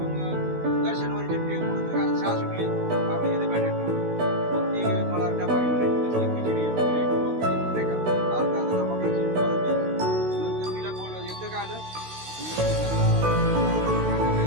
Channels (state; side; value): late; left; 16 ms